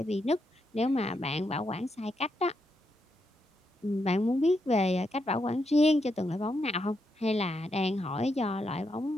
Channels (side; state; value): both; normal; correlation 0.81